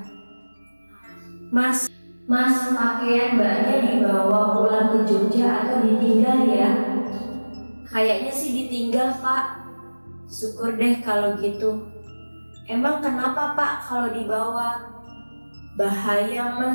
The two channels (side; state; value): both; inverted; correlation -1.00